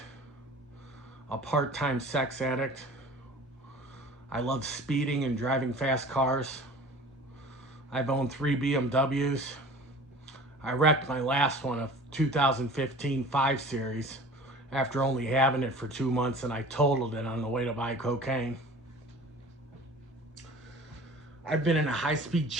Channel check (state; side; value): normal; both; correlation 0.42